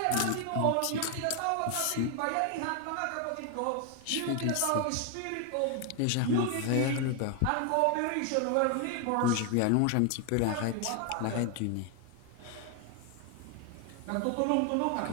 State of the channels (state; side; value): different; both; correlation 0.01